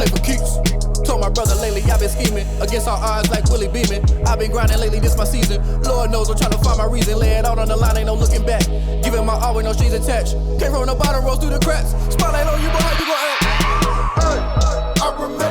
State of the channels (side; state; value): both; identical; correlation 1.00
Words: for keeps. Told my brother lately, I've been scheming against all odds like Willie Beeman. I've been grinding lately, this my season. Lord knows I'm trying to find my reason. Lay it out on the line, ain't no looking back. Giving my all with no strings attached. Came from the bottom, rose through the cracks. Spotlight on you, but how you gon' act? Hey, I